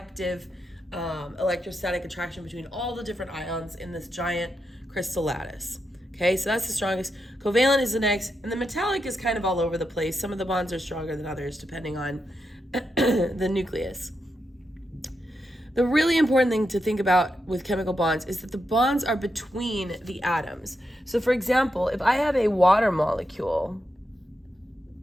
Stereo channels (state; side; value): normal; both; correlation 0.85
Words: electrostatic attraction between all the different ions in this giant crystal lattice. Okay, so that's the strongest. Covalent is the next, and the metallic is kind of all over the place. Some of the bonds are stronger than others depending on the nucleus. The really important thing to think about with chemical bonds is that the bonds are between the atoms. So for example, if I have a water molecule,